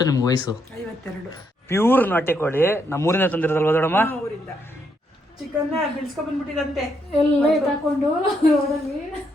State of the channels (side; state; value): both; normal; correlation 0.76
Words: ನಿಮ್ಗೆ ವಯಸ್ಸು? 52. ಪ್ಯೂರ್ ನಾಟಿ ಕೋಳಿ ನಮ್ಮೂರಿನ ತಂದಿರೋದಲ್ವ ದೊಡಮ್ಮ? ಊರಿಂದ ಚಿಕನ್ ಬಿಡಿಸ್ಕೊಂಡ್ ಬಂದ್ಬಿಟ್ಟಿದಂತೆ ಎಲ್ಲ ತಕೊಂಡು ರೋಡಲ್ಲಿ.